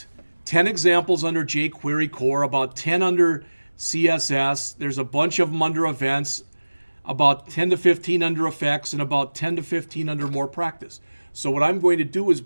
10 examples under jQuery core, about 10 under CSS. There's a bunch of them under events, about 10 to 15 under effects, and about 10 to 15 under more practice. So what I'm going to do is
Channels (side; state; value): both; inverted; correlation -1.00